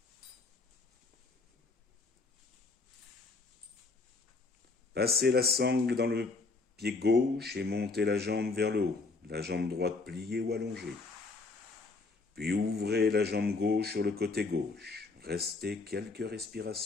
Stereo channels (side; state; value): right; quieter; 3.8 dB